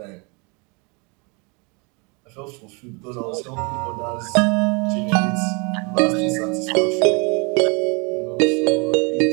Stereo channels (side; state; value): left; quieter; 31.1 dB